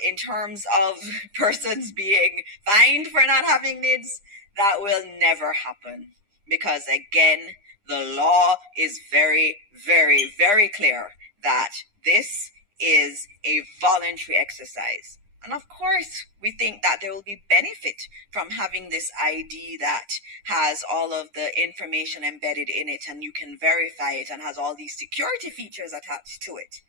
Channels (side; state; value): left; late; 9.9 ms